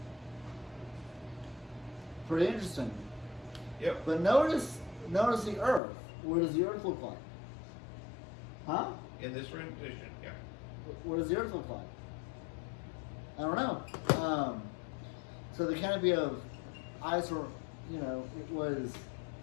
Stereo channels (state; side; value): drops out; right; at 5.8 s